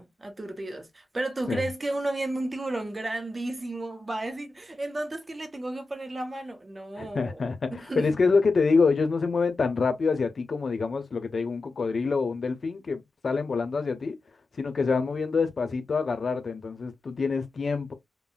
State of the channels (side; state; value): right; quieter; 3.3 dB